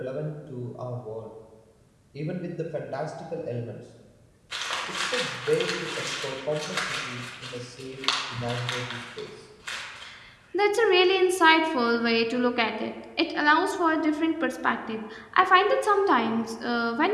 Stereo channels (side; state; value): both; identical; correlation 1.00